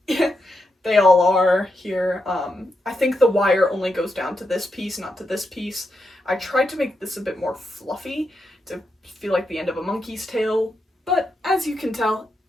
they all are here. I think the wire only goes down to this piece, not to this piece. I tried to make this a bit more fluffy to feel like the end of a monkey's tail, but as you can tell,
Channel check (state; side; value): normal; both; correlation 0.84